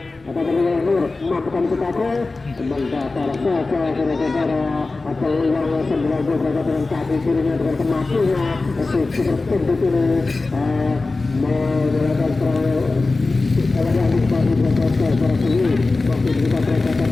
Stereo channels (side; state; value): right; quieter; 3.5 dB